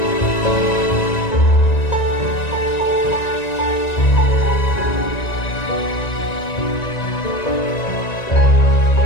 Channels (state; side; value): late; right; 1.9 ms